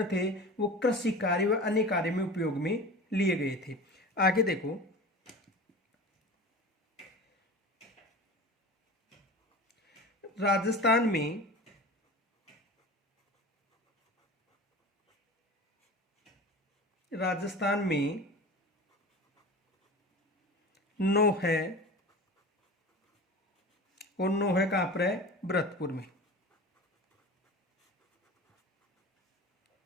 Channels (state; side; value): normal; both; correlation 0.34